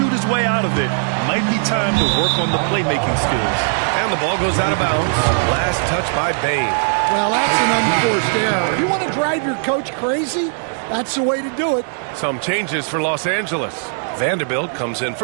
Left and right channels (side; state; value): left; silent; 64 dB below the other